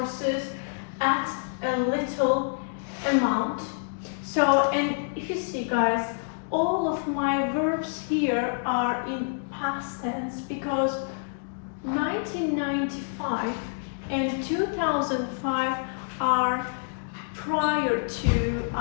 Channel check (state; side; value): silent; right; digital silence